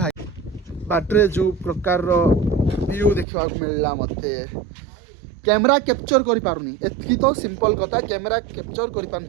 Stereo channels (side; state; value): left; drops out; at 3.2 s